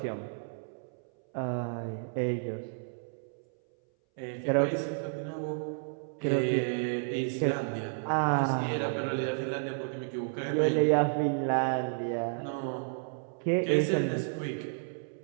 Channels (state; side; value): silent; left; 57 dB below the other